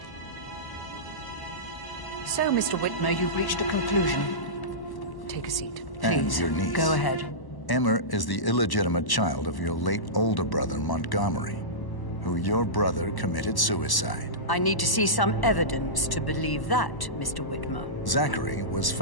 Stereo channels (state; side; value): late; right; 1.0 ms